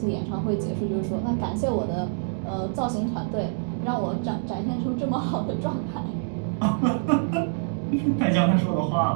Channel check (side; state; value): left; silent; digital silence